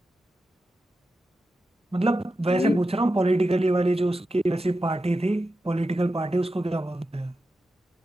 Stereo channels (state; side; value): normal; both; correlation 0.90